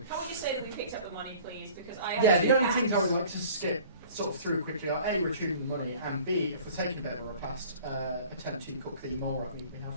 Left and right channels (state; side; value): inverted; both; correlation -0.47